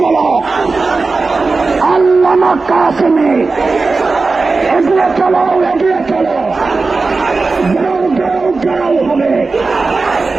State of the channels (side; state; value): left; quieter; 3.9 dB